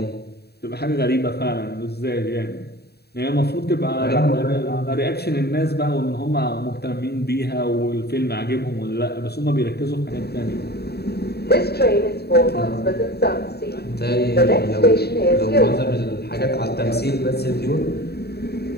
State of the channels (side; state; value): right; late; 0.47 ms